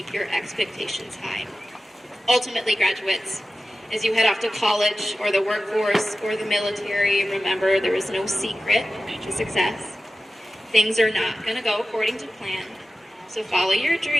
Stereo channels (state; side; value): normal; both; correlation 0.95